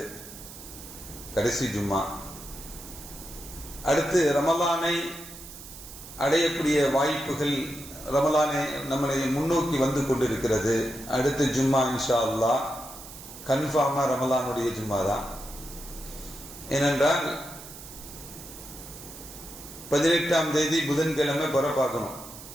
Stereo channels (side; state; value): right; noise; hiss, 15 dB below the sound